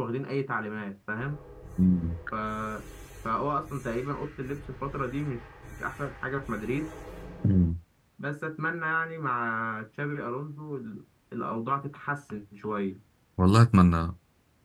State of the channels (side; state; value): both; identical; correlation 1.00